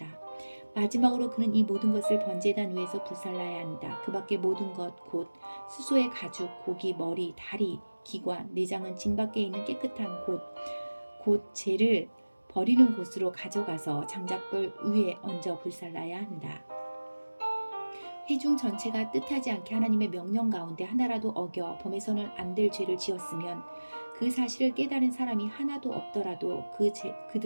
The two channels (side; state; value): both; inverted; correlation -1.00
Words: 마지막으로 그는 이 모든 것을 번제단 위에서 불살라야 한다. 그 밖에 모든 것 곧 수소의 가죽, 고기, 머리, 다리, 기관, 내장은 진 밖에 있는 깨끗한 곧 죄를 버리는 곳으로 가져가서 장작불 위에 얹어 불살라야 한다. 회중 전체가 뜻하지 않게 하나님의 명령 가운데 하나라도 어겨 범해서는 안 될 죄를 지었으면 그 사실을 깨달은 사람이 하나도 없더라도